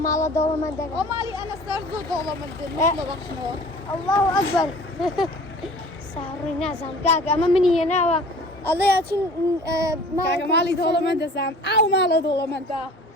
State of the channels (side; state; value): both; normal; correlation 0.46